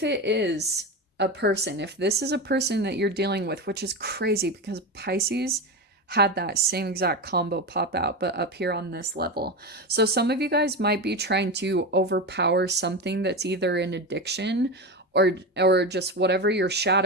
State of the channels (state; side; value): normal; both; correlation 0.20